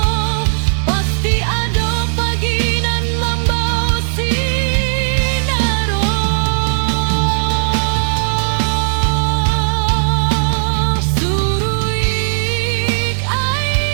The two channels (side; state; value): left; silent; digital silence